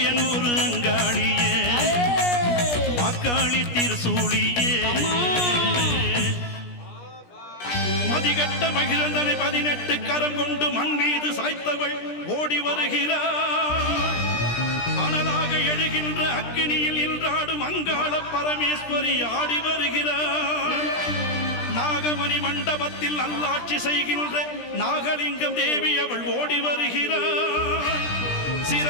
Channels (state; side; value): late; right; 17 ms